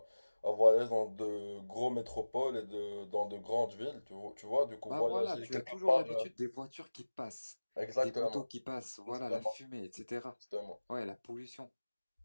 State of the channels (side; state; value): both; inverted; correlation -1.00